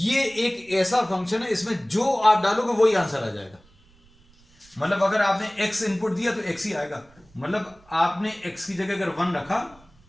एक ऐसा फंक्शन है, इसमें जो आप डालोगे वही आंसर आ जाएगा। मतलब अगर आपने x इनपुट दिया तो x ही आएगा। मतलब आपने x की जगह अगर 1 रखा,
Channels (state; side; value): noise; right; rumble, 29 dB below the sound